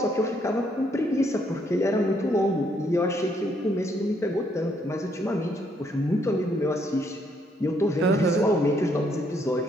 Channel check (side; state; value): both; normal; correlation 0.71